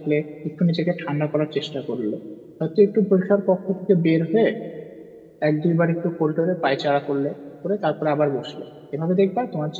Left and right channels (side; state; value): both; identical; correlation 1.00